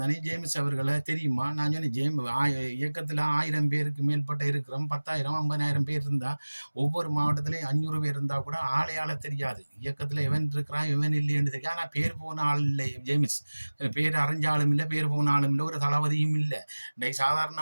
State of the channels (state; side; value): inverted; both; correlation -1.00